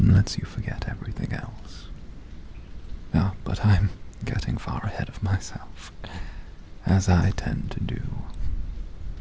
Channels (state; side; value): identical; both; correlation 1.00